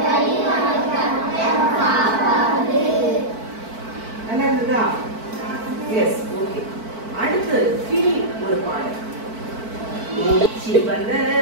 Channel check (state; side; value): late; left; 4.5 ms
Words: நல்லதுதா எஸ் ஓகே அடுத்து கிளி ஒரு பாடல் மூச்சு வந்த